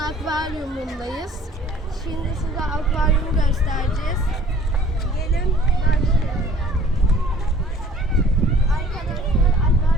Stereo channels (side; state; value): both; normal; correlation 0.53